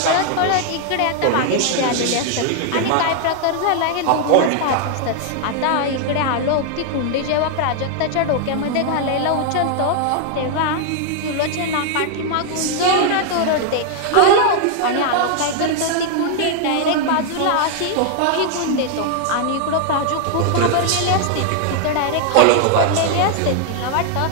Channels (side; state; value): both; different; correlation 0.00